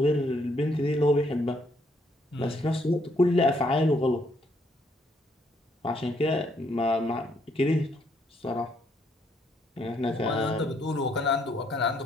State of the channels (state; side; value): normal; both; correlation 0.71